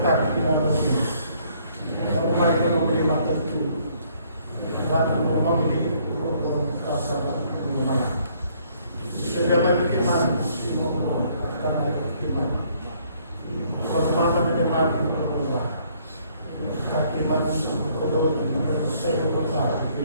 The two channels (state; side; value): inverted; both; correlation -0.65